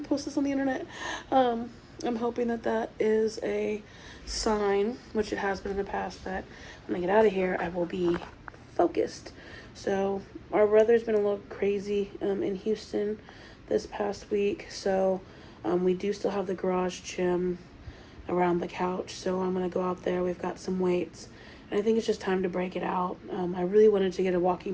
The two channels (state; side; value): identical; both; correlation 1.00